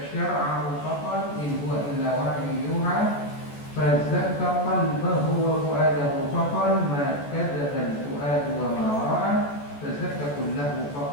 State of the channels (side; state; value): right; late; 14 ms